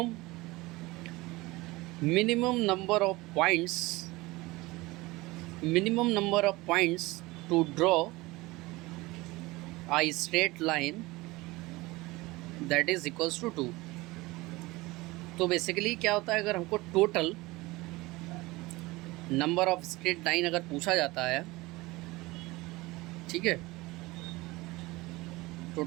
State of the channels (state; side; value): quieter; left; 21.3 dB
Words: number of points to draw a straight line that is equals to 2. तो बेसिकली क्या होता है, अगर हमको total number of straight line अगर पूछा जाता है, ठीक है,